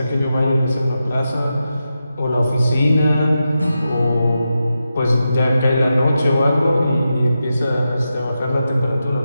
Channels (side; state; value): both; inverted; correlation -0.89